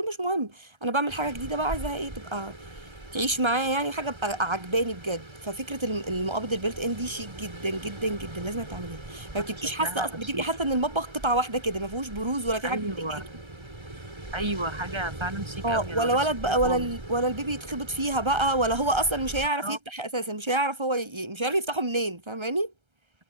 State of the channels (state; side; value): late; left; 1.3 ms